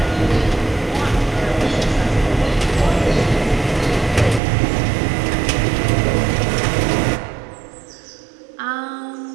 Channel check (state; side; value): drops out; left; at 4.4 s